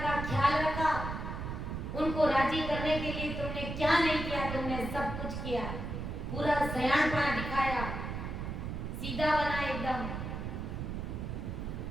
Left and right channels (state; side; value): noise; right; rumble, 5 dB below the sound